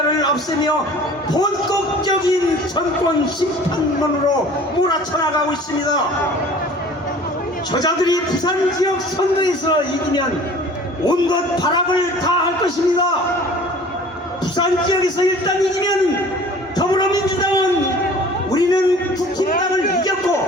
없애며 본격적인 정권 심판론으로 몰아쳐나가고 있습니다. 저자들이 부산 지역 선거에서 이기면 온갖 발악을 다 할 것입니다. 부산 지역에서 일단 이기면 더불어민주당은 우리는 국힘당을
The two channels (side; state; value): both; normal; correlation 0.46